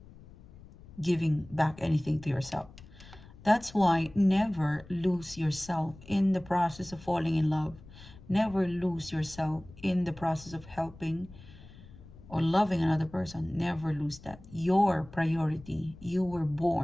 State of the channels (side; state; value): left; noise; rumble, 20 dB below the sound